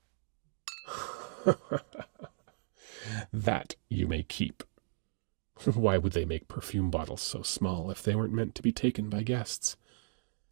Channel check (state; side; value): silent; left; digital silence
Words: That you may keep. Why would they make perfume bottles so small if they weren't meant to be taken by guests?